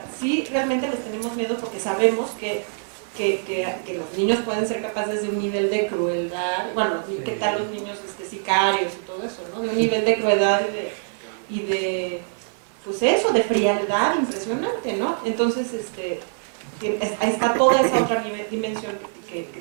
sí realmente les tenemos miedo porque sabemos que los niños pueden ser capaces de un nivel de crueldad, bueno, ¿qué tal los niños sicarios y todo eso, ¿no? De un nivel de crueldad y de pues eso, de frialdad impresionante, ¿no? Entonces, ahí está toda esa otra dimensión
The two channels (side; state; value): left; silent; digital silence